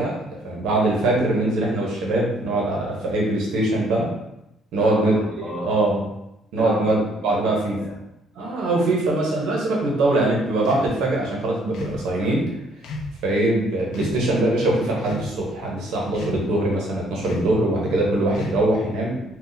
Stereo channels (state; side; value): normal; both; correlation 0.64